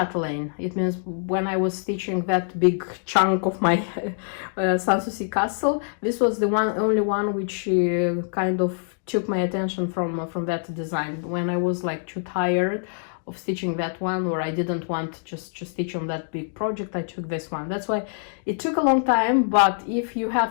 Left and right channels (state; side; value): silent; right; digital silence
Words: It means when I was stitching that big chunk of my Sanssouci castle, this was the only one which kind of took my attention from that design. When I was like too tired of stitching that one, or I didn't want just to stitch on that big project, I took this one. That's why it took a long time, but if you